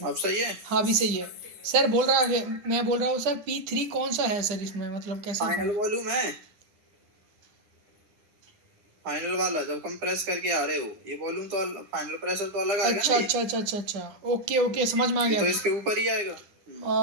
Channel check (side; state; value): left; late; 9.8 ms